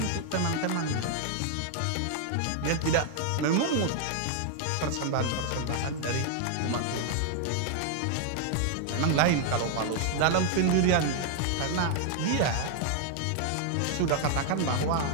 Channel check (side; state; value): both; different; correlation 0.00